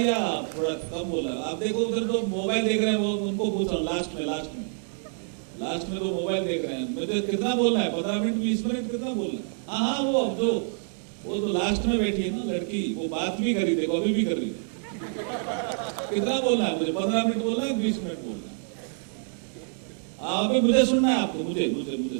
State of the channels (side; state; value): left; silent; 60 dB below the other